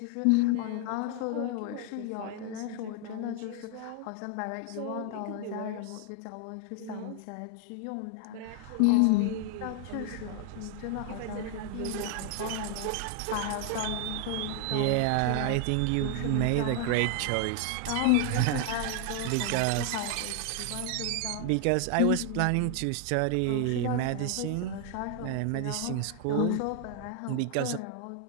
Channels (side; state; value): both; different; correlation 0.00